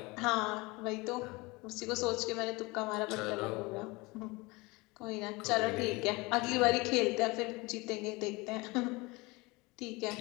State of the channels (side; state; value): right; quieter; 24.3 dB